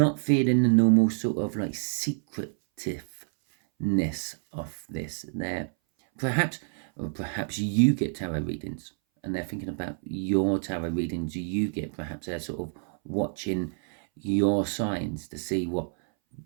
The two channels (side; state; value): left; silent; 59 dB below the other